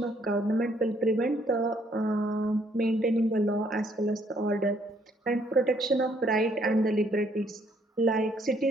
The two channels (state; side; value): normal; both; correlation 0.67